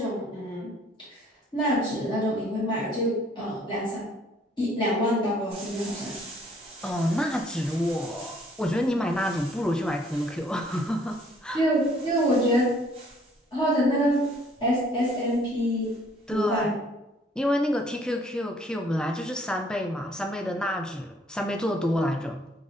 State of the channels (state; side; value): normal; both; correlation 0.61